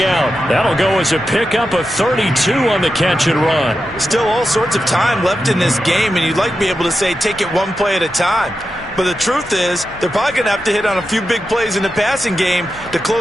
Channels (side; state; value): both; normal; correlation 0.89